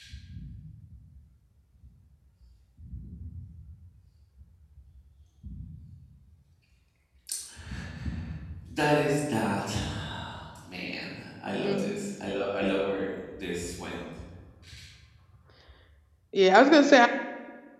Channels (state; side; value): identical; both; correlation 1.00